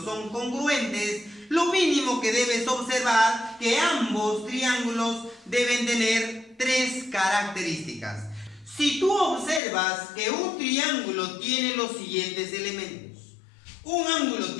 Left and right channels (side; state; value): right; drops out; at 9.6 s